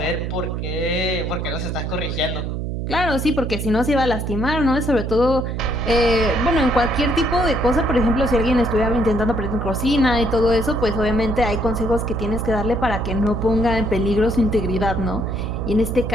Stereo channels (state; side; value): noise; right; hum, 3 dB below the sound